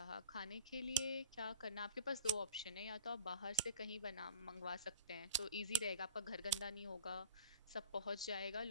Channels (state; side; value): inverted; both; correlation -0.39